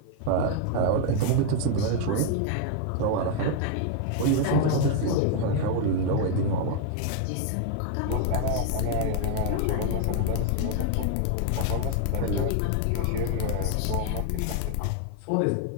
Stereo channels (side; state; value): both; different; correlation 0.00